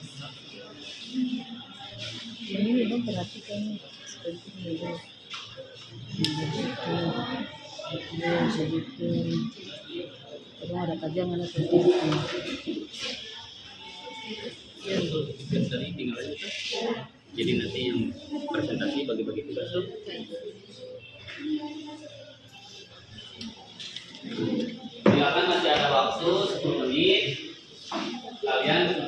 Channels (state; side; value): identical; both; correlation 1.00